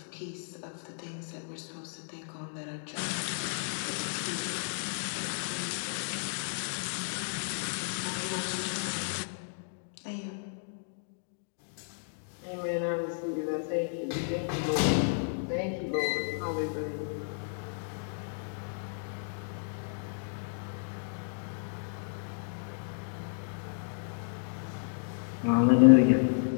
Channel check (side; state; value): right; silent; digital silence